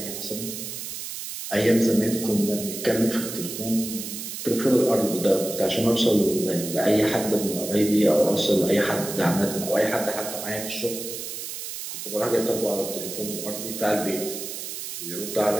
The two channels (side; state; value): right; noise; hiss, 7 dB below the sound